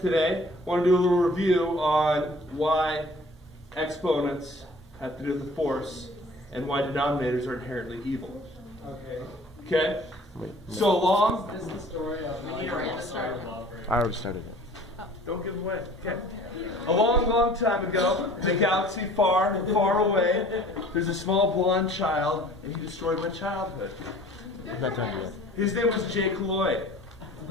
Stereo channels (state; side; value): normal; both; correlation 0.49